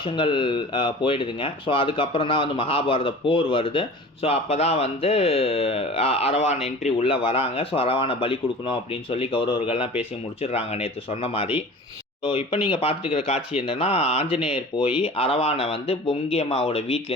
போயிடுதுங்க. ஸோ அதுக்கப்புறம் தான் வந்து மகாபாரத போர் வருது. ஸோ அப்போ தான் வந்து அரவான் என்ட்ரி உள்ளே வராங்க. ஸோ அரவானை பலி கொடுக்கணும் அப்படின்னு சொல்லி கௌரவர்கள்லாம் பேசி முடிச்சிடுறாங்க நேற்று சொன்ன மாதிரி. ஸோ இப்போ நீங்கள் பார்த்துட்டு இருக்கிற காட்சி என்னென்னா, ஆஞ்சநேயர் போய் அரவானை வந்து பொங்கி அம்மாவோட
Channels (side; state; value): both; normal; correlation 0.40